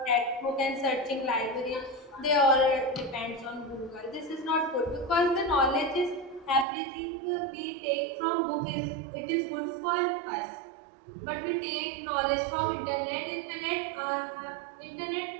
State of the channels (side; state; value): left; drops out; at 6.7 s